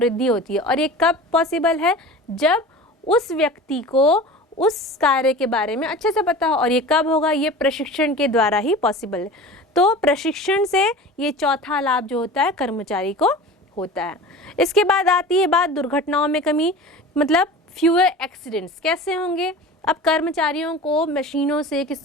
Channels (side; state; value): both; normal; correlation 0.37